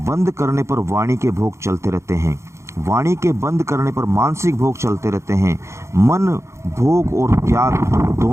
करने पर वाणी के भोग चलते रहते हैं, वाणी के बंद करने पर मानसिक भोग चलते रहते हैं। मन भोग और त्याग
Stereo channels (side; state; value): left; late; 0.14 ms